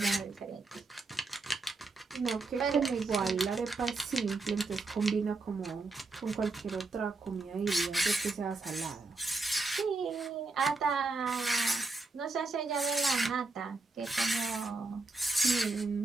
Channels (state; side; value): quieter; left; 3.6 dB